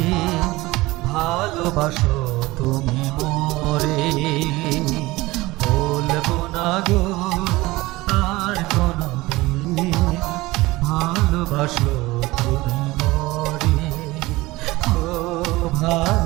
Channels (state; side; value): quieter; left; 20.0 dB